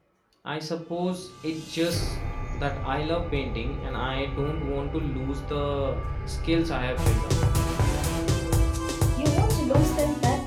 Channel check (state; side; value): identical; both; correlation 1.00